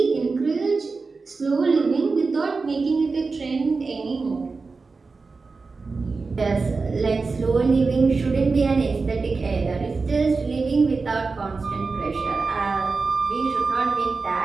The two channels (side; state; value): left; quieter; 4.2 dB